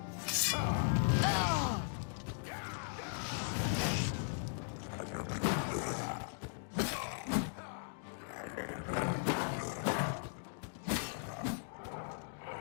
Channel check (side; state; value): right; silent; digital silence